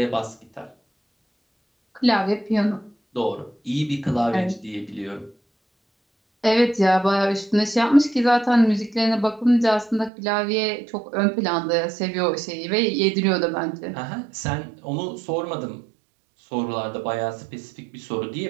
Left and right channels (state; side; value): drops out; left; at 10.1 s